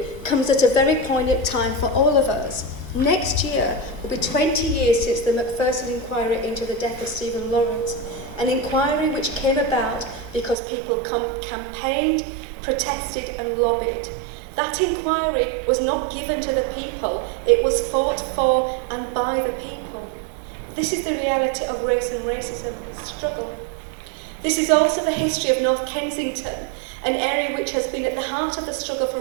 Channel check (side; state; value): left; drops out; at 10.6 s